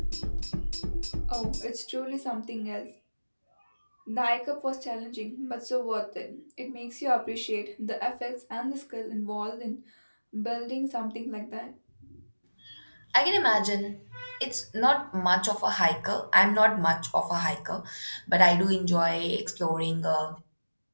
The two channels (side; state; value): both; inverted; correlation -1.00